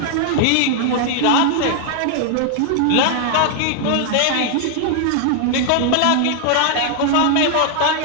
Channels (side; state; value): both; different; correlation 0.00